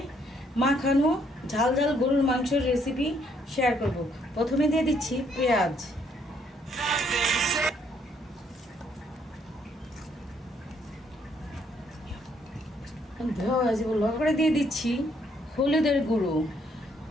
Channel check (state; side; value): normal; both; correlation 0.69